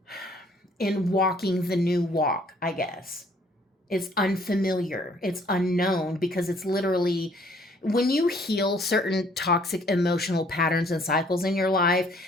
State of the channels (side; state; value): both; normal; correlation 0.61